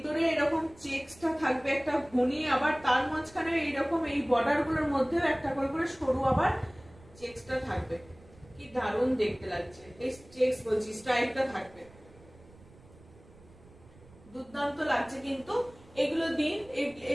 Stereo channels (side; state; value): right; noise; rumble, 24 dB below the sound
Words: এরকম চেকসটা থাকবে একটা ঘুনি, আবার তার মাঝখানে এইরকম এই বর্ডার গুলোর মধ্যেও একটা করে করে সরু আবার চেকসটা থাকবে। কি দারুণ দেখতে লাগছে, এই চেকস বলছি স্ট্রাইপটা থাকবে, দুর্দান্ত লাগছে। কিন্তু এগুলো দিন,